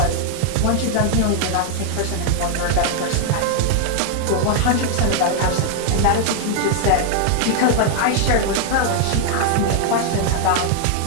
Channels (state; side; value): different; both; correlation 0.00